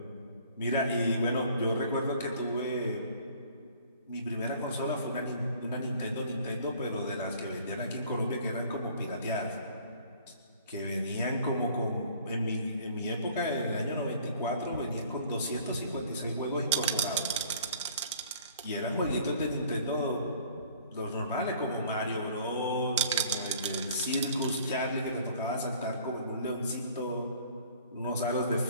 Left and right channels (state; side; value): inverted; both; correlation -0.53